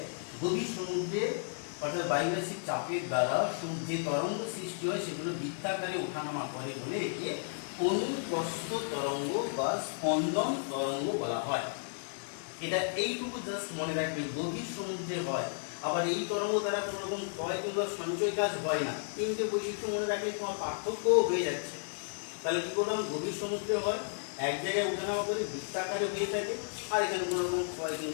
গভীর সমুদ্রে অর্থাৎ বায়ুরাশির চাপের দ্বারা যে তরঙ্গ সৃষ্টি হয় সেগুলো বৃত্তাকারে ওঠানামা করে বলে একে অনুপ্রস্থ তরঙ্গ বা স্পন্দন তরঙ্গ বলা হয়। এটা এইটুকু জাস্ট মনে রাখবে, গভীর সমুদ্রে হয়, আবার এই তরঙ্গ দ্বারা কোনো রকম ক্ষয় কিংবা সঞ্চয় কাজ হয় না। তিনটে বৈশিষ্ট্য মনে রাখলে তোমার পার্থক্য হয়ে যাচ্ছে। তাহলে কি করলাম, গভীর সমুদ্রে হয়, এক জায়গায় ওঠানামা করে বৃত্তাকারে হয়ে থাকে, আর এখানে কোনো রকম ক্ষয়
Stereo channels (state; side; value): silent; right; digital silence